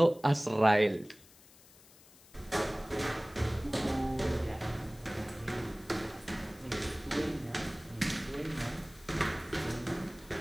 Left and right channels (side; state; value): left; noise; hiss, 24 dB below the sound